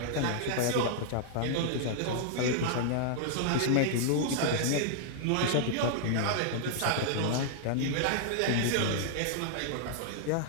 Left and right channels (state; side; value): different; both; correlation -0.01